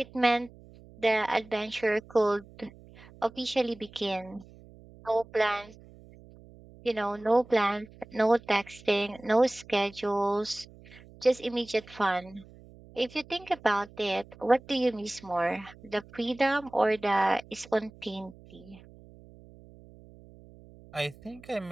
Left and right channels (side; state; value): right; noise; hum, 22 dB below the sound